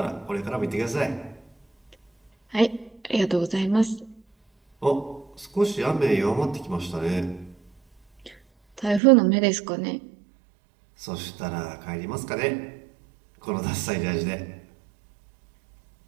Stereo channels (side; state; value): left; drops out; at 9.0 s